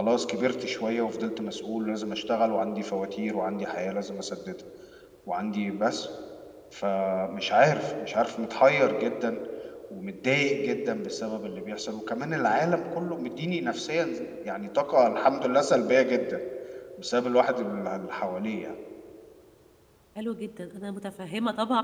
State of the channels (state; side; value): identical; both; correlation 1.00